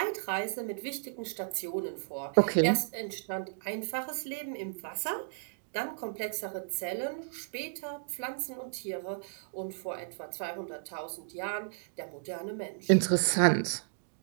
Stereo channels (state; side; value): silent; left; digital silence